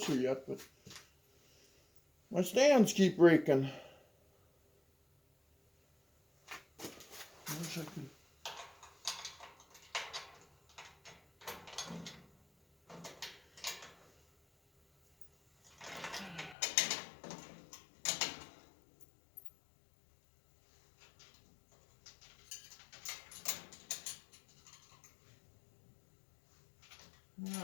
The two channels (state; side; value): drops out; right; at 16.6 s